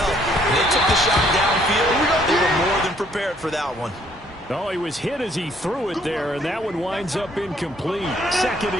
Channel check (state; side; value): normal; both; correlation 0.65